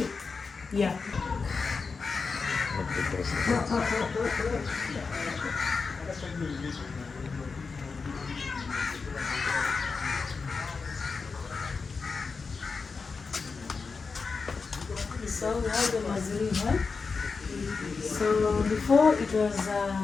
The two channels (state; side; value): quieter; right; 4.7 dB